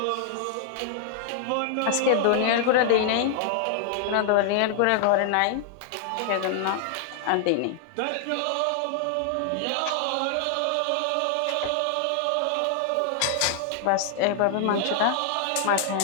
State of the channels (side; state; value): both; different; correlation 0.00